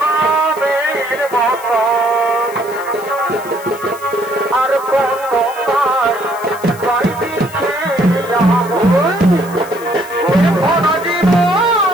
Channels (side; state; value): left; noise; hiss, 19 dB below the sound